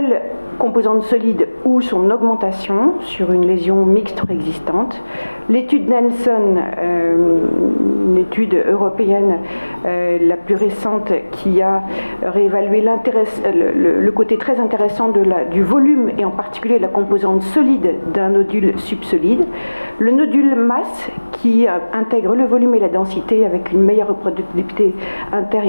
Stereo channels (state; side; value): inverted; both; correlation -1.00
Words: composante solide ou son augmentation sur une lésion mixte existante. L'étude Nelson, une étude européenne la plus récente qui a réévalué le côté très intéressant du volume et en particulier la composante solide d'un nodule subsolide. Le nodule masse qui intègre le volume et la densité avec une meilleure reproductibilité inter-